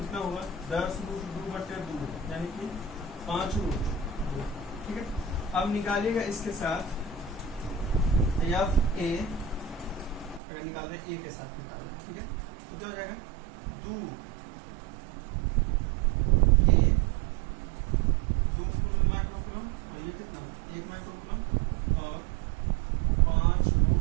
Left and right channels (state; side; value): drops out; left; at 10.4 s